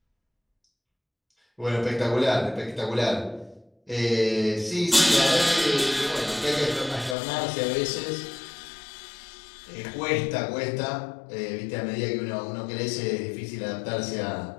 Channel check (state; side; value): drops out; right; at 7.2 s